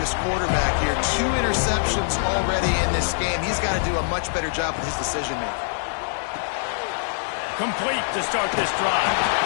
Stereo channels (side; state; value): right; silent; digital silence